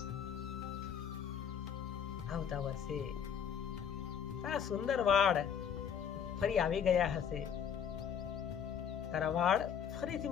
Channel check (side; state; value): right; quieter; 8.0 dB